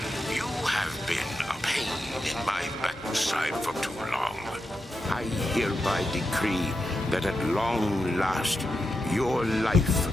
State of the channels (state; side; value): normal; both; correlation 0.87